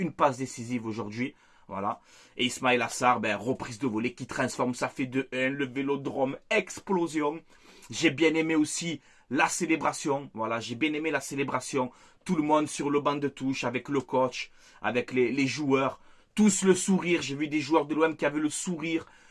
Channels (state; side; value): identical; both; correlation 1.00